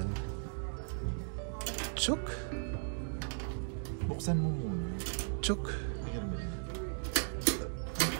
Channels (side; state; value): left; silent; digital silence